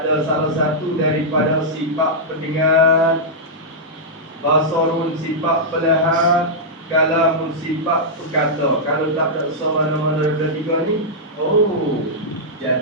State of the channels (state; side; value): normal; both; correlation -0.09